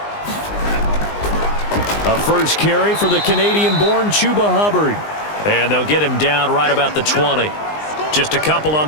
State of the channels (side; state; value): right; late; 19 ms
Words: A first carry for the Canadian-born Chuba Hubbard. And they'll get him down right about the 20. Just a couple on